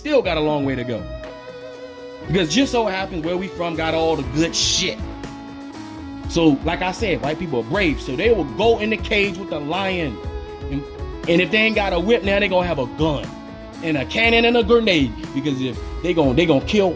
got a long way to go. Because just so happens where we from got all the good shit. So, like I said, white people are brave. So they will go in the cage with the lion. And if they ain't got a whip, now they gonna have a gun. And a cannon and a grenade. Because if they gonna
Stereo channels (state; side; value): identical; both; correlation 1.00